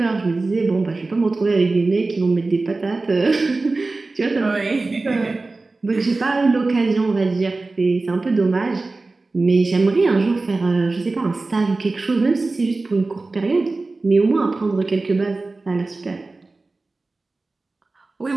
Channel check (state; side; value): quieter; left; 3.4 dB